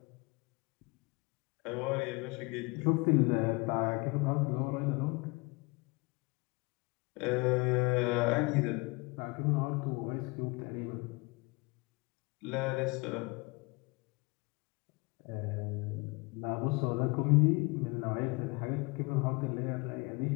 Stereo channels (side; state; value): right; quieter; 27.0 dB